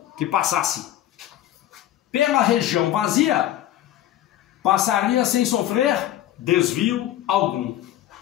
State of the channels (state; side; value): quieter; right; 12.9 dB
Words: que passasse pela região vazia passaria sem sofrer desvio algum.